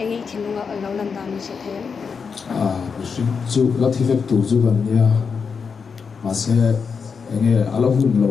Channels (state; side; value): quieter; right; 5.7 dB